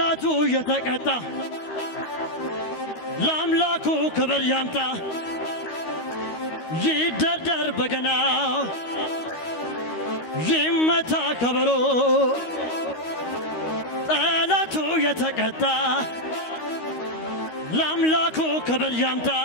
የተቀጣ ለአምላኩ ክብር ያምጣ ይደርደር በገናው ይመታ ከበሮ ጠላቱ የተቀጣ ለአምላኩ ክብር ያምጣ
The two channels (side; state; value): right; late; 13 ms